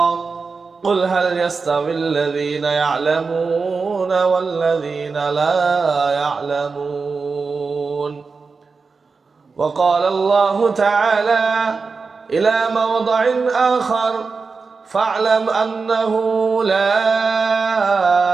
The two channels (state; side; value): quieter; left; 4.6 dB